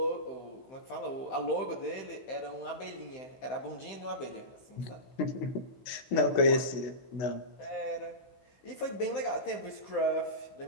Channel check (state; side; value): late; right; 16 ms